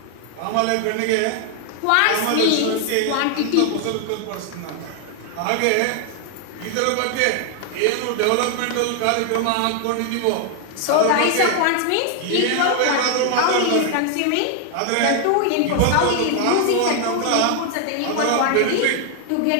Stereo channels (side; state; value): both; different; correlation 0.00